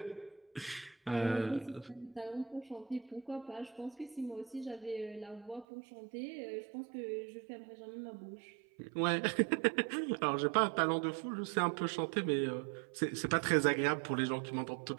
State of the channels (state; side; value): drops out; left; at 5.7 s